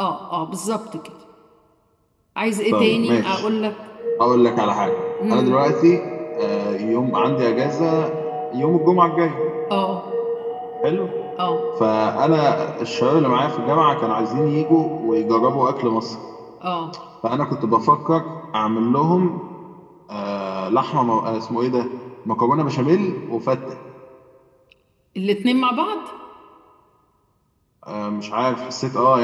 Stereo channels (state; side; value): identical; both; correlation 1.00